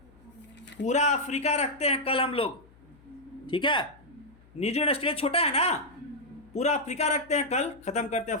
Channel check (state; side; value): noise; left; hum, 27 dB below the sound